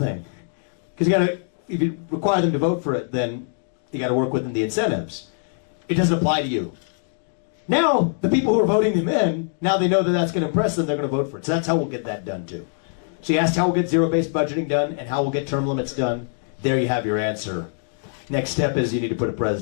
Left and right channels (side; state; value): right; silent; digital silence